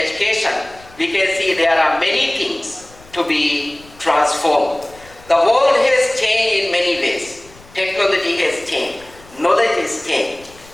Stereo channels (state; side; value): noise; left; rumble, 25 dB below the sound